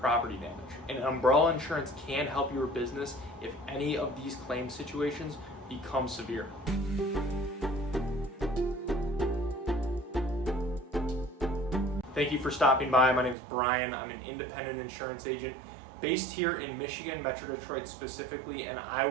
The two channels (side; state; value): left; drops out; at 13.4 s